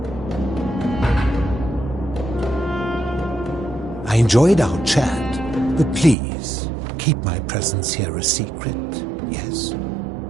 I enjoyed our chat, but please, keep my presence here a secret, yes?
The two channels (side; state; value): left; drops out; at 6.2 s